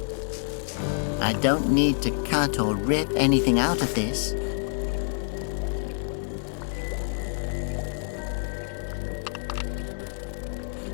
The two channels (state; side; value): silent; right; 60 dB below the other